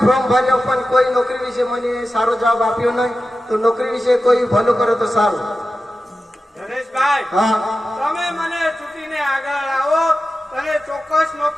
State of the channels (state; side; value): normal; both; correlation 0.93